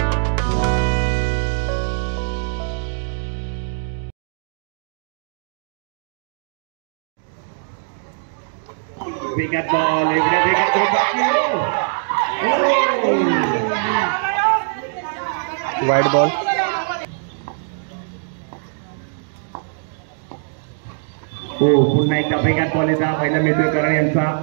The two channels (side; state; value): left; silent; digital silence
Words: ball, wide ball. पुन्हा एकदा वेगात बॉल येतात. पहिला मिळतोय करण यांचा